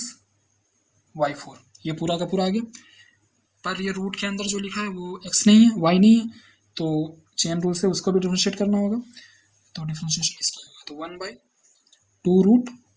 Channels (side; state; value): both; identical; correlation 1.00